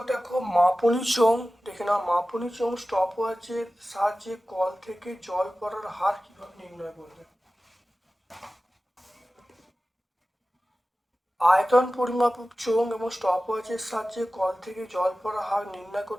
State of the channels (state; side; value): normal; both; correlation 0.96